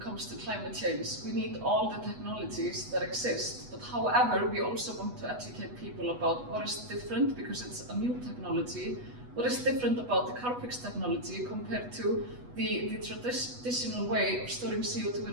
to climate change. We need all the technologies that exist. But however, we also want to educate people about what is different, because it's a new technology. What is different about the Carbfix technology compared to the traditional way of storing CO2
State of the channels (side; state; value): left; late; 8.2 ms